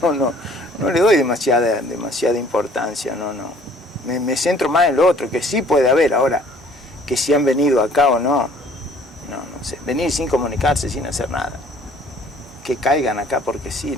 le doy demasiada importancia, no. Me centro más en lo otro, que sí puede haber. Ahora, que si han venido acá o no sé. Venir sin comunicarse, sin hacer nada. Que caigan acá porque sí,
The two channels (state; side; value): normal; both; correlation 0.56